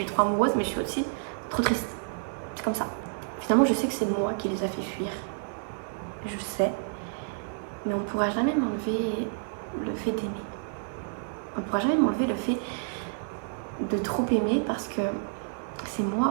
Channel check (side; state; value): left; silent; 58 dB below the other